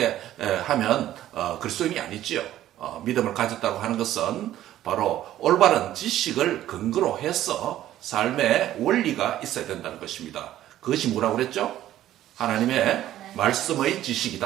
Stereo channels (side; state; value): left; quieter; 13.1 dB